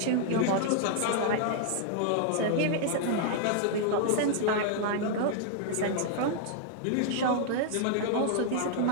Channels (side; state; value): both; different; correlation -0.01